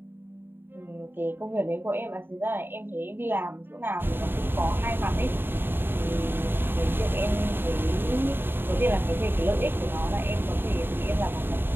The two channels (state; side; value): late; left; 0.10 ms